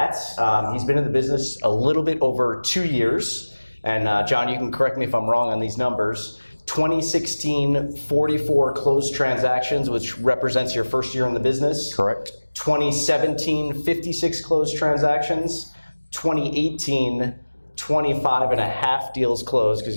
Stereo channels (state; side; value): inverted; both; correlation -1.00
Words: He's been in the business a little bit over 2 years. And John, you can correct me if I'm wrong on these numbers. 2016, 44 closed transactions, which represents your first year in the business. Correct. 2017, 56 closed transactions. 2018, 25 and a half deals closed, because